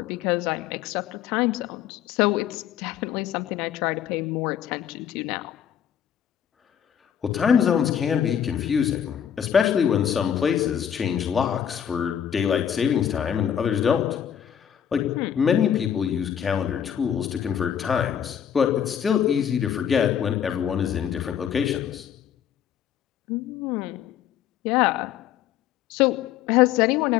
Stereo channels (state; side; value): quieter; right; 9.2 dB